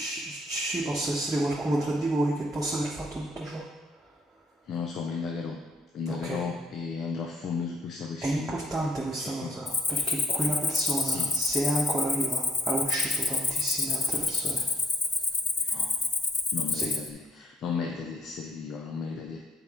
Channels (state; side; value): normal; both; correlation 0.60